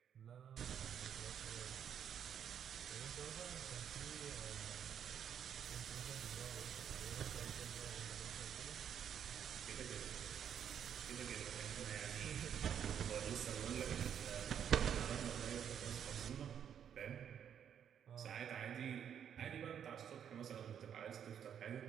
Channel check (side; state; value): left; quieter; 8.7 dB